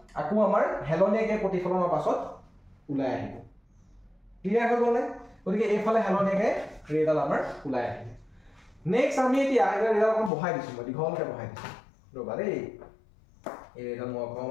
আকৌ আমাৰ হেলনিয়াকে প্ৰতিফলনৰ পাছত ওলাই আহিব ক্লিয়াৰ হৈ গ'লে গতিকে এইফালে হেলনিয়াকে ৰেডাল আমাৰ ওলাই আহিব নেক্সট আমি এতিয়া ৰেডাল অকণ বহাই দিছো মই দীঘলকে বহাই দিছো ৰবা দেই এই ৰেডাল মই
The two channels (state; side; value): drops out; right; at 10.3 s